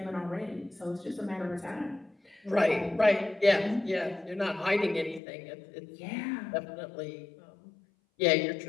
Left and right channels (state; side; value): drops out; right; at 5.2 s